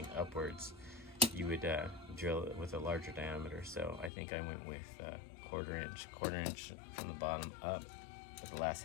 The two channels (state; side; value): drops out; right; at 4.1 s